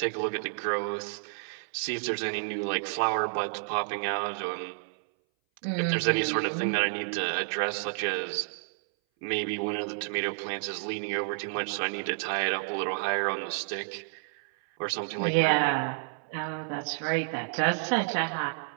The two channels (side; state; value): left; silent; 58 dB below the other